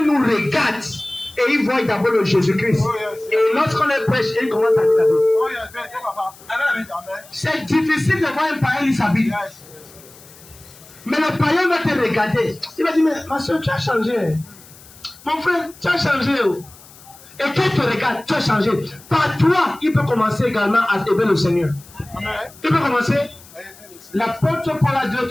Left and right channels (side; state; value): left; noise; hiss, 22 dB below the sound